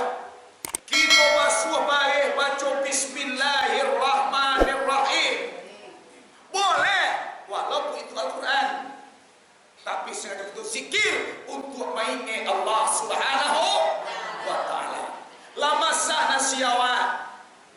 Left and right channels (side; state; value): both; identical; correlation 1.00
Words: Kita basuh baik baca bismillahirrahmanirrahim. Boleh walaupun itu Al-Quran. Tapi sengaja itu zikir untuk mainnya Allah Subhanahu wa taala. Lama sah nasiawan.